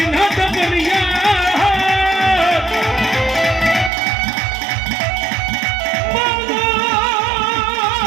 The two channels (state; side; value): drops out; left; at 3.9 s